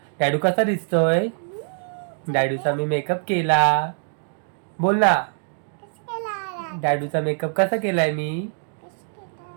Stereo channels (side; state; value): left; silent; 63 dB below the other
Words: डॅडू कसा दिसतोय? डॅडूचा मी मेकअप केला. बोल ना. डॅडूचा मेकअप कसा केलाय मी?